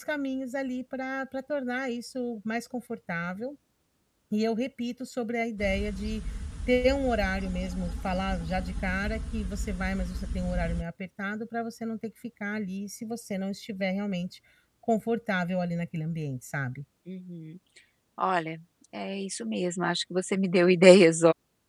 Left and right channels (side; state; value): both; identical; correlation 1.00